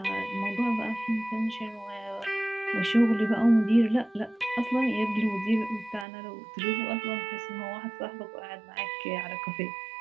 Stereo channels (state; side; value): drops out; left; at 6.1 s